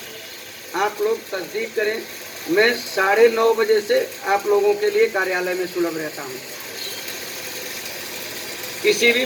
आप लोग तस्दीक करें, मैं 9:30 बजे से आप लोगों के लिए कार्यालय में सुलभ रहता हूं। किसी भी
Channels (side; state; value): both; identical; correlation 1.00